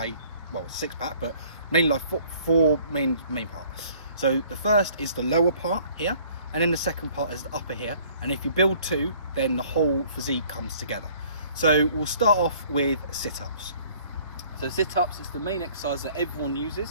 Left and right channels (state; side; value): inverted; both; correlation -0.56